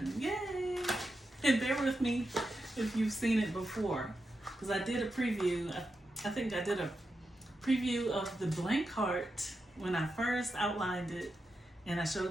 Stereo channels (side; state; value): both; normal; correlation 0.88